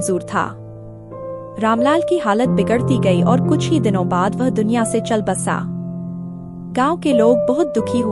था। रामलाल की हालत बिगड़ती गई और कुछ ही दिनों बाद वह दुनिया से चल बसा। गांव के लोग बहुत दुखी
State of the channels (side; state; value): both; identical; correlation 1.00